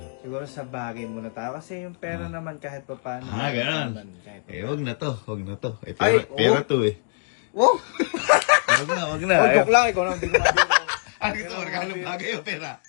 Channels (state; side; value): silent; right; digital silence